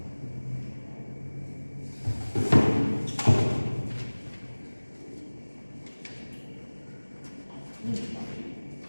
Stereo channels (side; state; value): both; inverted; correlation -1.00